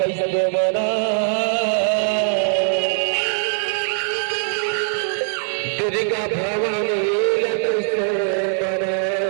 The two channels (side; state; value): left; silent; digital silence